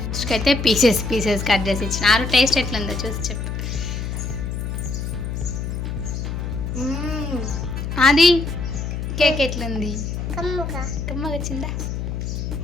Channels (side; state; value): left; noise; hum, 4 dB below the sound